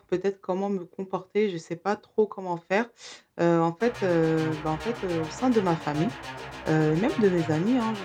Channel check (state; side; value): identical; both; correlation 1.00